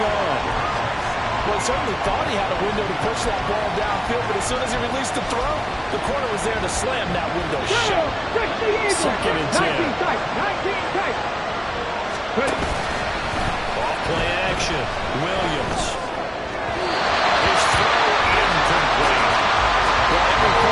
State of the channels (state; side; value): identical; both; correlation 1.00